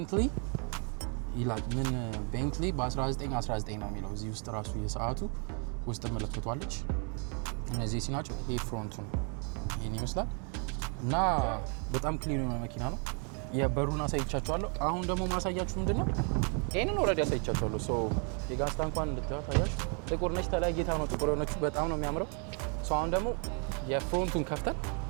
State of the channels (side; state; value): left; quieter; 39.2 dB